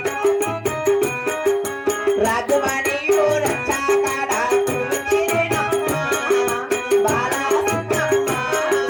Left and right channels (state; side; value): identical; both; correlation 1.00